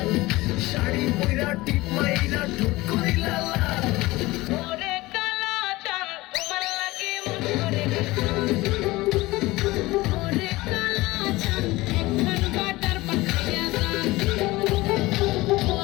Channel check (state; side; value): quieter; right; 20.0 dB